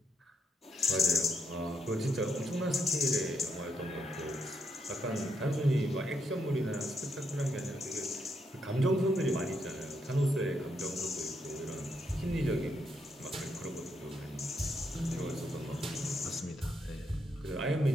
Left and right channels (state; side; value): normal; both; correlation 0.78